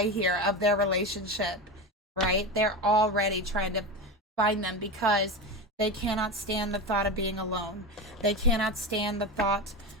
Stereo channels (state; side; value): normal; both; correlation 0.21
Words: here of their relationship, right? They're already trying to find them because they cannot stand the thought of being alone. They cannot stand the thought